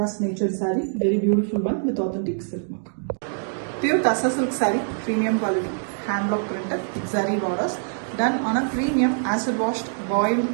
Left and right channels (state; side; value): silent; left; 63 dB below the other